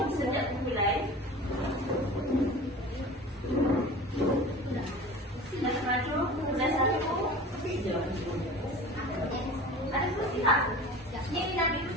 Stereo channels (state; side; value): normal; both; correlation 0.37